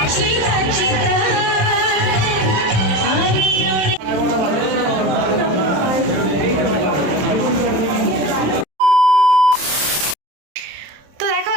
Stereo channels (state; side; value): late; left; 27 ms